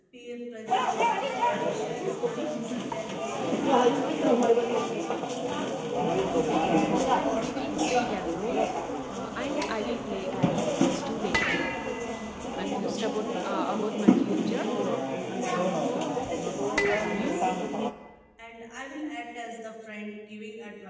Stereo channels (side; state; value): both; identical; correlation 1.00